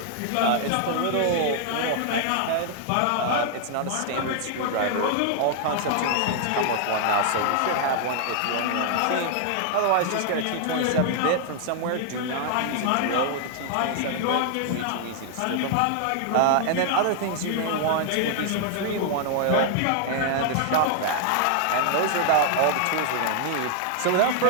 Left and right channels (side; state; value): both; different; correlation 0.00